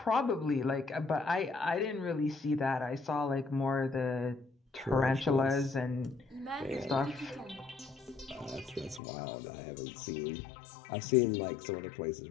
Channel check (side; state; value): right; drops out; at 9.0 s